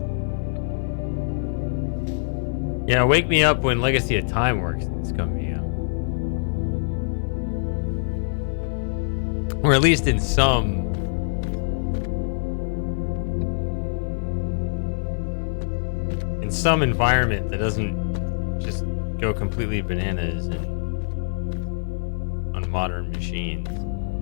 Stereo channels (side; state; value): right; silent; 57 dB below the other